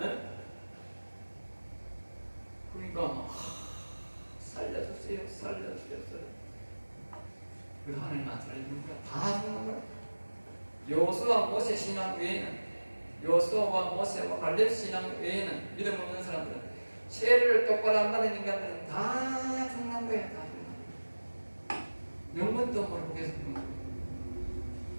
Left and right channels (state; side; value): inverted; both; correlation -1.00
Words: 그러니까 살려주세요. 그 하나님 안 살려주는 거야. 다 죽는 거야. 여호수아 모세 신앙 외에는, 여호수아와 모세와 갈렙 신앙 외에는, 믿음 없는 사람들은, 세례를 똑바로 안 받은 인간들은 다 죽는 거야. 다 죽는 거야. 영문도 모르고 계속 죽는 거야.